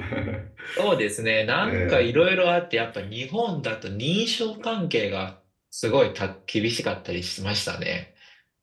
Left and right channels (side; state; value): both; identical; correlation 1.00